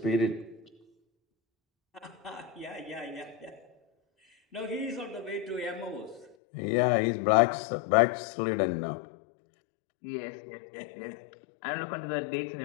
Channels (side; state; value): right; drops out; at 6.4 s